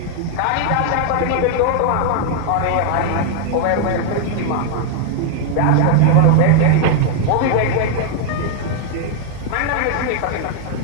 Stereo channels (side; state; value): both; different; correlation 0.00